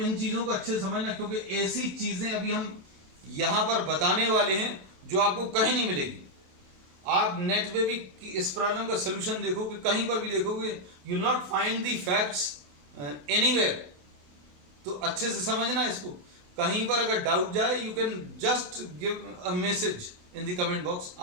चीजों को अच्छे से समझना क्योंकि ऐसी चीजें अभी हम यहां पर बताने वाले हैं जो आपको कहीं नहीं मिलेगी। आप नेट पे भी इस प्रॉब्लम का सलूशन देखोगे, कहीं पर भी देखोगे, you will not find the facts anywhere. तो अच्छे से समझना इसको। कहीं पर अगर डाउट जाए you can just give a message in the comment box.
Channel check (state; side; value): late; left; 28 ms